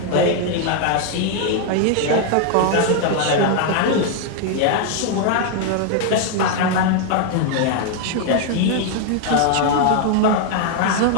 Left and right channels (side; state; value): both; different; correlation 0.00